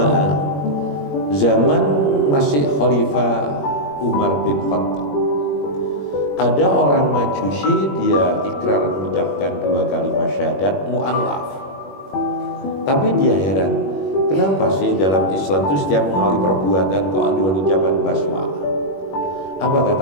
zaman masih Khalifah Umar bin Khattab, ada orang Majusi, dia ikrar mengucapkan 2 kalimat syahadat mu'allaf. Tapi dia heran, kenapa sih dalam Islam itu setiap mengawali perbuatan kok ada ucapan basmalah? Apa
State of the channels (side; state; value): right; late; 21 ms